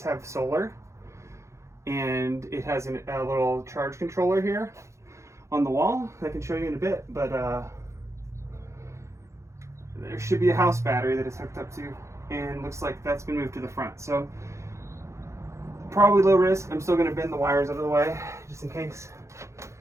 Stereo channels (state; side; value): late; left; 0.14 ms